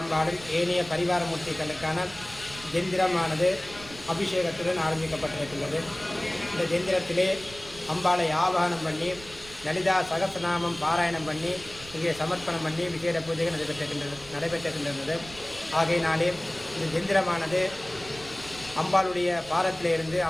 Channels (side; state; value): right; noise; rumble, 18 dB below the sound